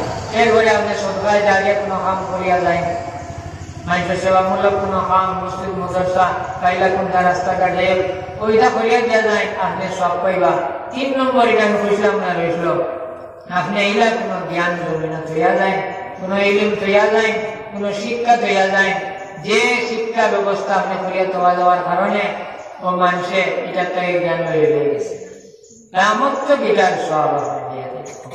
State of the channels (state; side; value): identical; both; correlation 1.00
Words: এরপরে আপনি সরকারি জায়গায় কোনো কাম করিয়া যায়, মানুষের সেবামূলক কোনো কাম, মসজিদ মাদ্রাসা কাইলা কোনটা রাস্তাঘাটে ওইটা করিয়া দিয়া যায়, আপনি সব পাইবা। 3 নম্বর এটা আমি কইছিলাম না রইল, আপনি এইলা কোনো জ্ঞান জমিন তৈয়া যায়, কোনো ইলিম তৈয়া যায়, কোনো শিক্ষা তৈয়া যায়, যে শিক্ষা ব্যবস্থা আপনি করিয়া তোয়া দেওয়ার কারণে ও মানুষে এটা থেকে জ্ঞান হয়ে গেছে, আমার তো বিটার সব আপনি দিয়ে দেয়।